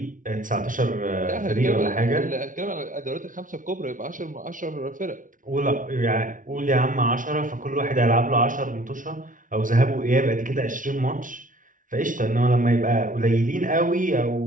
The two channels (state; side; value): late; left; 0.38 ms